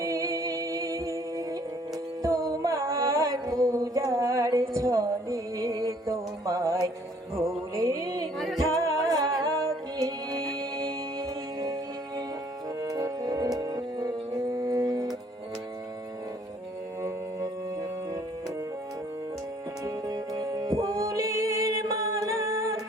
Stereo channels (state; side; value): normal; both; correlation 0.60